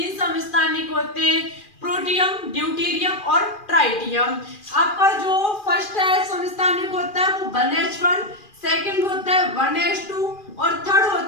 समस्थानिक होते हैं, प्रोटियम, ड्यूटेरियम और ट्राइटियम। आपका जो फर्स्ट है समस्थानिक होता है वो 1H1, सेकंड होता है 1H2 और थर्ड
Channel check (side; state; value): right; late; 2.4 ms